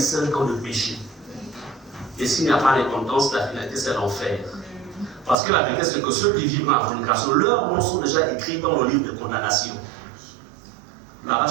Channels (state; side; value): drops out; left; at 5.4 s